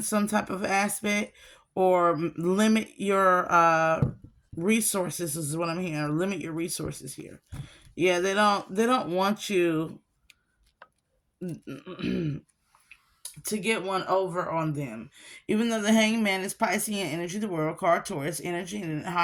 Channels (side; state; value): both; identical; correlation 1.00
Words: some type of aspect or limit your resources is what I'm hearing. Limit your resources here. Yeah, they don't want you to get one over on them. Even though the Hangman is Piscean energy, the World card Taurus energy, and the